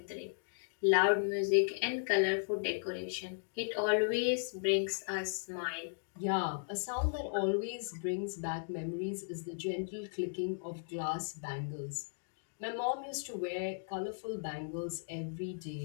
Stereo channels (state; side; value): silent; right; digital silence